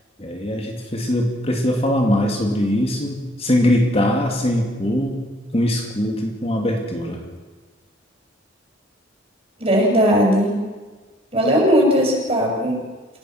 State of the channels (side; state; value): both; normal; correlation 0.60